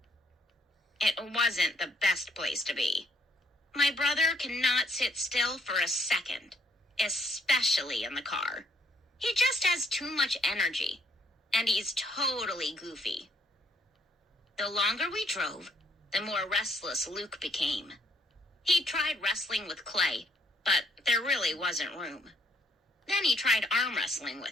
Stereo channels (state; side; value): normal; both; correlation 0.69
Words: It wasn't the best place to be. My brother cannot sit still for a second, especially in the car. He just has too much energy, and he's totally goofy. The longer we drove, the more restless Luke became. He tried wrestling with Clay, but there really wasn't room. Then he tried arm wrestling